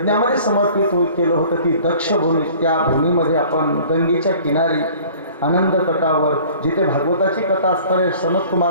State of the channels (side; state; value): both; inverted; correlation -0.49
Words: समर्पित केलं होतं, ती दक्ष भूमी, त्या भूमीमध्ये आपण गंगेच्या किनारी आनंद तटावर जिथे भागवताची कथा असणारे सनत